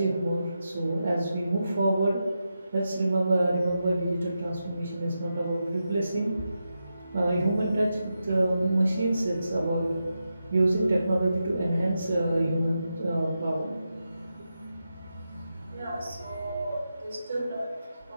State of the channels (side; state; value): both; inverted; correlation -0.88